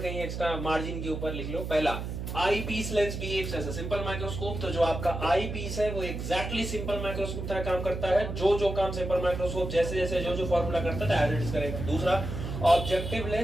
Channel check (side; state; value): right; noise; hum, 5 dB below the sound